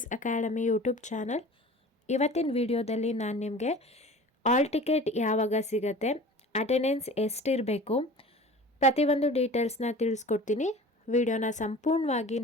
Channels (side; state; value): both; normal; correlation 0.41